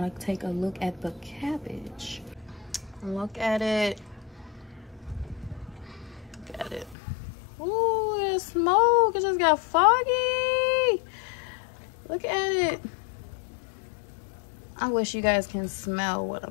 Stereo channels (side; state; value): right; drops out; at 7.0 s